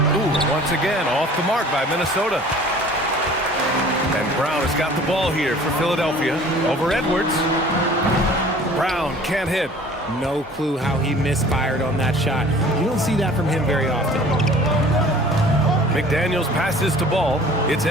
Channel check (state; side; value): normal; both; correlation 0.48